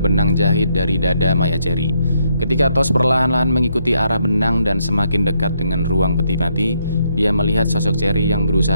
benang jahit dari dada mayat Cherry. Ketika Tos perlahan-lahan mengikuti arah benang dan semakin dekat dengan ruang peti mati, dia melihat sosok Cherry yang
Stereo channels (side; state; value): both; inverted; correlation -0.75